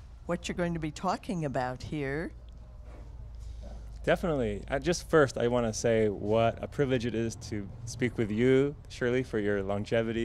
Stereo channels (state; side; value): identical; both; correlation 1.00